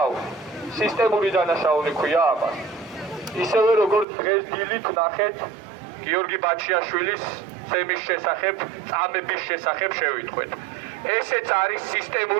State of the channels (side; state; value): left; drops out; at 4.0 s